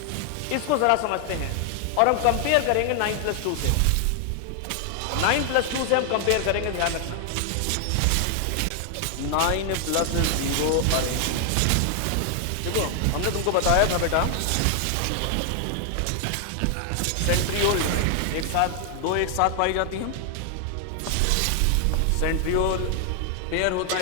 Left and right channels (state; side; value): different; both; correlation 0.00